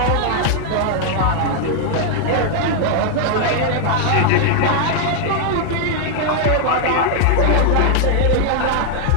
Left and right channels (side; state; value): both; different; correlation 0.00